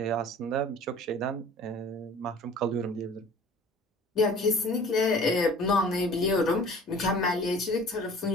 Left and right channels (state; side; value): normal; both; correlation 0.46